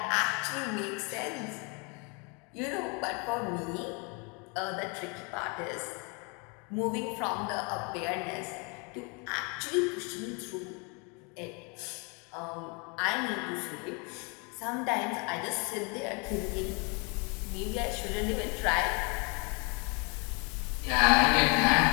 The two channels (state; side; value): quieter; right; 32.4 dB